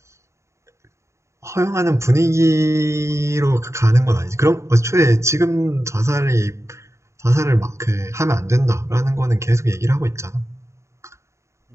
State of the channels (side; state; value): left; late; 0.14 ms